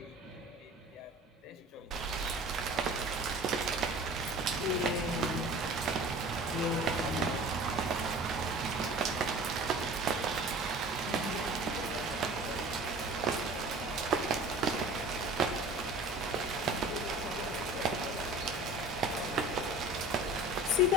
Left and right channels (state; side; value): normal; both; correlation 0.42